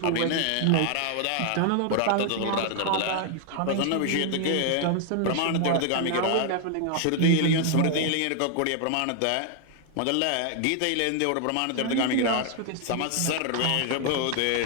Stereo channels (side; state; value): both; different; correlation 0.00